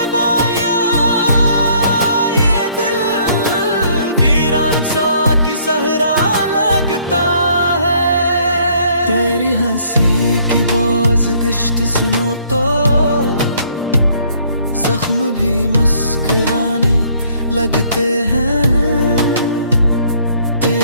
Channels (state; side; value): inverted; both; correlation -0.63